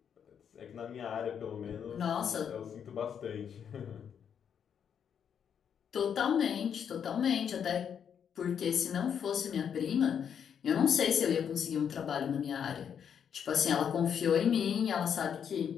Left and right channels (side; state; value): right; quieter; 7.9 dB